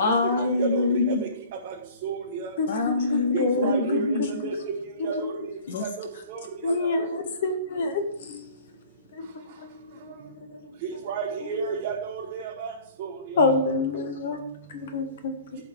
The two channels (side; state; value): both; inverted; correlation -0.46